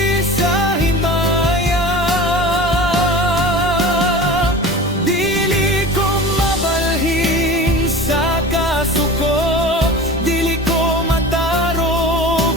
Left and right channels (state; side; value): normal; both; correlation 0.35